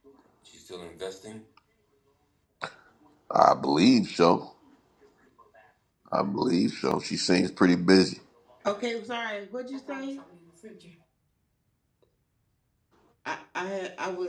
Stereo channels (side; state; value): both; identical; correlation 1.00